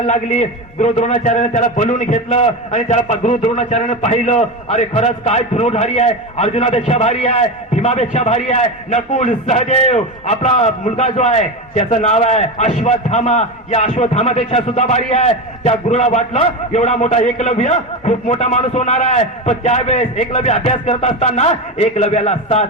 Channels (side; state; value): both; normal; correlation 0.19